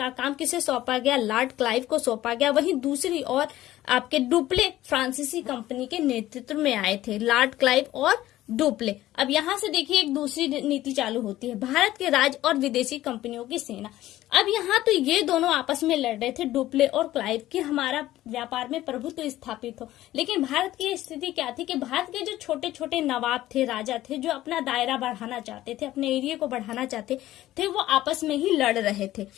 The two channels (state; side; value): quieter; right; 14.9 dB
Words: काम किसे सौंपा गया, लॉर्ड क्लाइव को सौंपा गया। वहीं दूसरी ओर आपके डुप्ले फ्रांसीसी कंपनी के नेतृत्व में आए थे, लॉर्ड क्लाइव और डुप्ले। अब यहां से देखिए एक दूसरी नीति चालू होती है, भारत के राज्य और विदेशी कंपनियों की सेना। अब यहाँ तो ये दोनों आपस में लड़ रहे थे, डुप्ले और क्लाइव, कि हमारा व्यापार में प्रभुत्व स्थापित हो। लेकिन भारत की स्थिति क्या थी कि भारत के जो छोटे छोटे नवाब थे, राजा थे, जो अपना दायरा बढ़ाना चाहते थे, अपने एरिया को बढ़ाना चाहते थे, वो आपस में ही लड़ रहे थे।